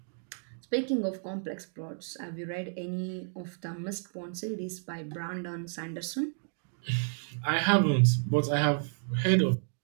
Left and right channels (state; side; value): silent; left; digital silence